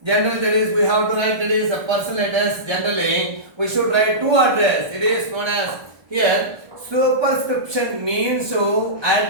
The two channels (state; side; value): late; left; 1.4 ms